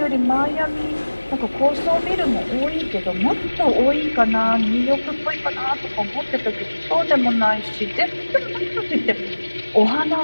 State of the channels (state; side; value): inverted; both; correlation -1.00